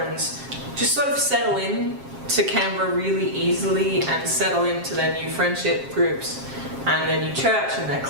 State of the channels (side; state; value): left; late; 7.4 ms